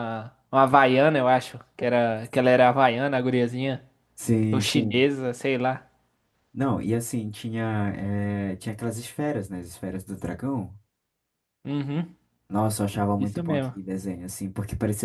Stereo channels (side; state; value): both; identical; correlation 1.00